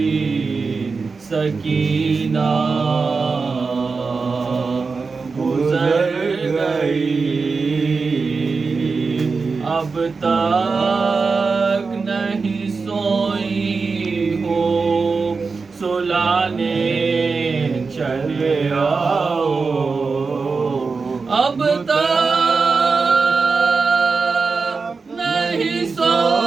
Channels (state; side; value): quieter; left; 4.5 dB